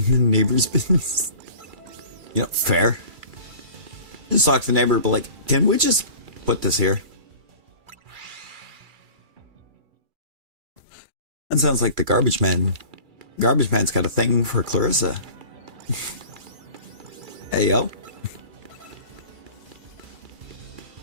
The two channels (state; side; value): late; left; 2.3 ms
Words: the neighbor's business. You know, fair. Just talk to the neighbor, but like, can we just put this here? That sounds like the garbage man. Garbage man's got a thing for Clarissa. Hey, yo.